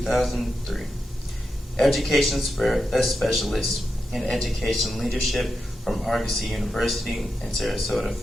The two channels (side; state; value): both; normal; correlation 0.88